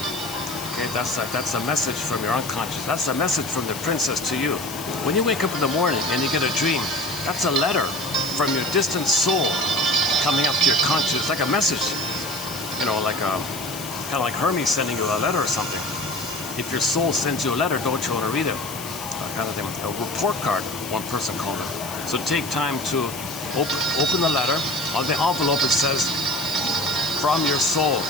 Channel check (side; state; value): left; noise; hiss, 11 dB below the sound